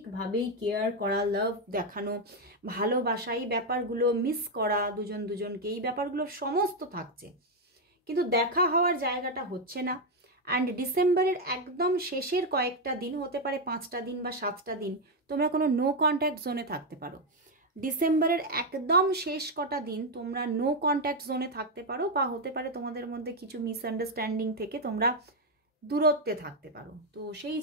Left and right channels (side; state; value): both; normal; correlation 0.04